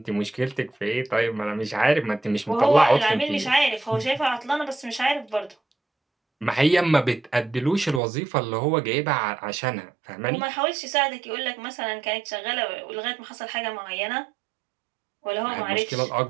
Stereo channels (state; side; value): drops out; left; at 8.0 s